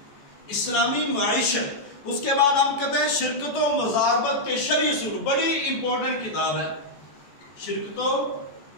اسلامی معیشت۔ اس کے بعد ہم کہتے ہیں شرکت و مزاربت کے شرعی اصول، بڑی امپورٹنٹ کتاب ہے، شرکت و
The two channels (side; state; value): right; late; 14 ms